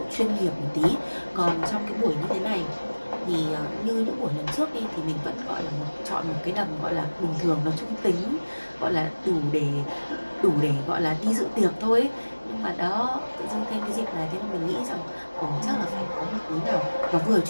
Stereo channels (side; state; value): both; inverted; correlation -1.00